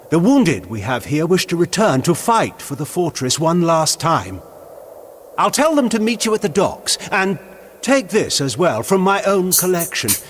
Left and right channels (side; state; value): both; identical; correlation 1.00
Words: The wounded we have here wish to return to fight for the fortress one last time. I'll tell them to meet you at the docks, and take this as well from my own collection.